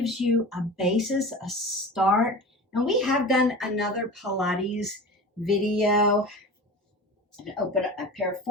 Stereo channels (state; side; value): normal; both; correlation 0.33